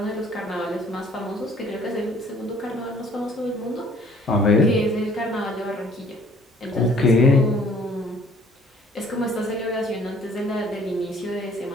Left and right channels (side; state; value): both; normal; correlation 0.57